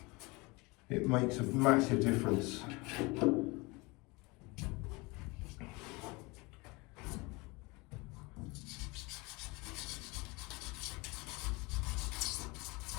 it makes a massive difference.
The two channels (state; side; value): quieter; right; 25.5 dB